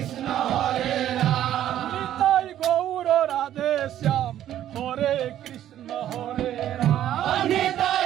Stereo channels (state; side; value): quieter; left; 11.7 dB